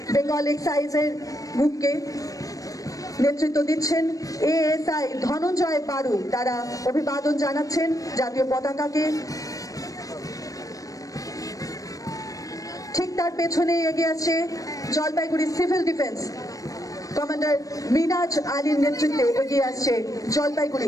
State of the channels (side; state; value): right; late; 0.16 ms